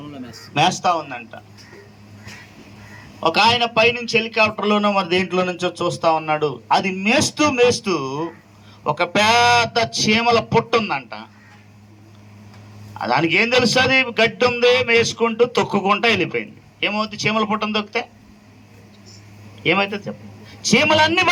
మేస్తా ఉందంట. ఒక ఆయన పైనుంచి హెలికాప్టర్లోనో మరి దేంట్లో నుంచో చూస్తా ఉన్నాడు. అది మేస్తూ మేస్తూ ఒక పెద్ద చీమల పుట్టు ఉందంట. దానికి ఏం తెలుస్తుంది? గడ్డి ఉంది, మేసుకుంటూ తొక్కుకుంటూ వెళ్ళిపోయింది. ఏమవుతుంది? చీమల పుట్టను తొక్కితే ఏమైతే చెప్ప, చీమలన్నీ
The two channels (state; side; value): identical; both; correlation 1.00